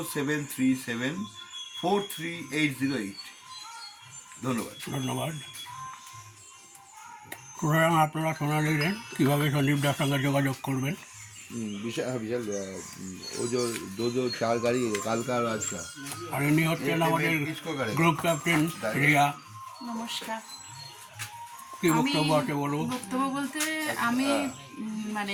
ধন্যবাদ। ধন্যবাদ। সুতরাং আপনারা শোনা নিলেন কীভাবে সন্দীপদার সঙ্গে যোগাযোগ করবেন। विशाल वो जो चार गाड़ी काल का आज का। আর ইনি হচ্ছেন আমাদের গ্রুপ ক্যাপ্টেন রিয়া। নমস্কার। কি বক্তব্য আছে বলুন। বক্তব্য বলতে আমি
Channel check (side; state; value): both; identical; correlation 1.00